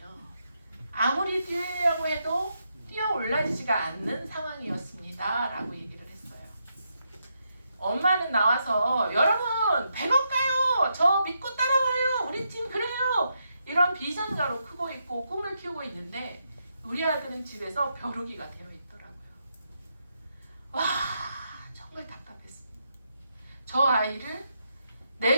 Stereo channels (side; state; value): both; inverted; correlation -0.81